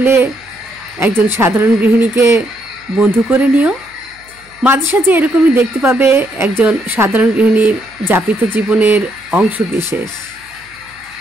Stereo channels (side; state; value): right; noise; hum, 29 dB below the sound